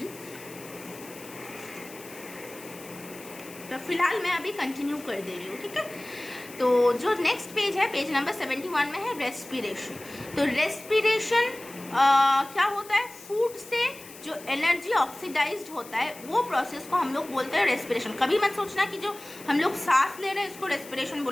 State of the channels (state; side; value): noise; left; hiss, 17 dB below the sound